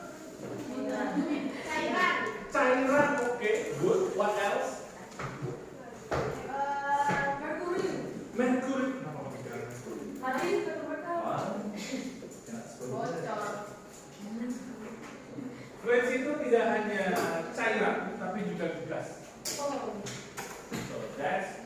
Cairan. Okay, good. What else? Mercury. Fluids itu tidak hanya cairan, tapi juga gas. So that's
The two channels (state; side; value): identical; both; correlation 1.00